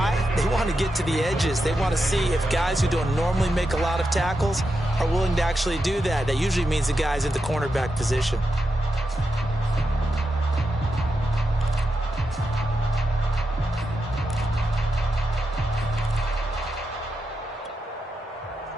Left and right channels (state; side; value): normal; both; correlation 0.87